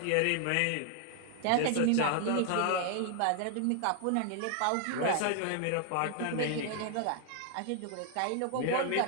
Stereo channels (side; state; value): both; different; correlation 0.00